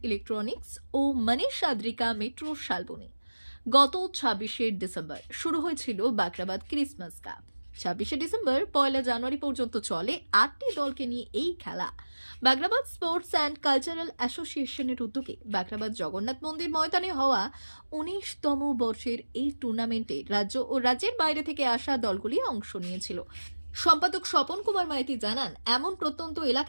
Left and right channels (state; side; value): inverted; both; correlation -1.00